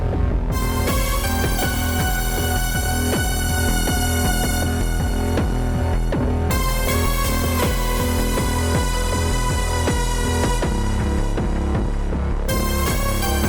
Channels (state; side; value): identical; both; correlation 1.00